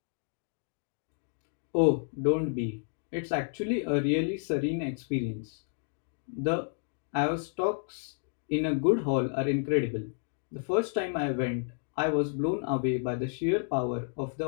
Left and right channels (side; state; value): right; silent; digital silence